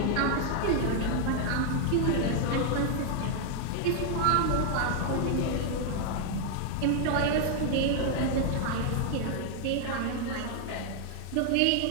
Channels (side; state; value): both; different; correlation 0.00